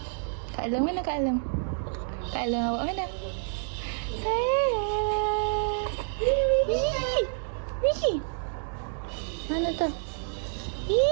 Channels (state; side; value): silent; left; digital silence